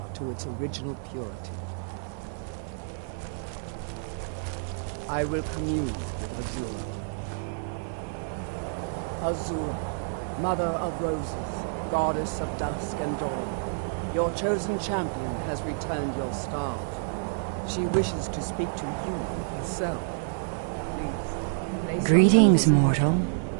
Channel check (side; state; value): left; silent; digital silence